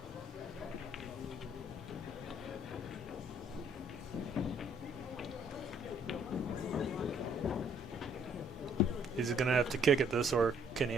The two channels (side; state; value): both; normal; correlation 0.63